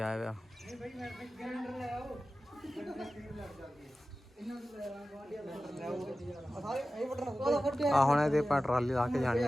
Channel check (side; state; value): both; normal; correlation 0.95